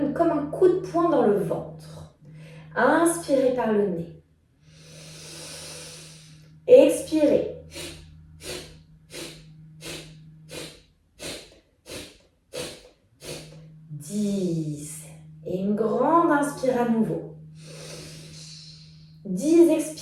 comme un coup de poing dans le ventre. Inspirez par le nez. Expirez. inspire à nouveau. 10,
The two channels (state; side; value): identical; both; correlation 1.00